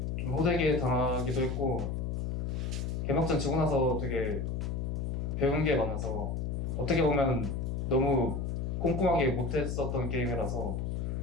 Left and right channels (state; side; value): noise; left; hum, 2 dB below the sound